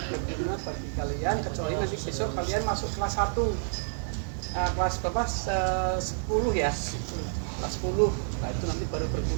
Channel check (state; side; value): silent; left; digital silence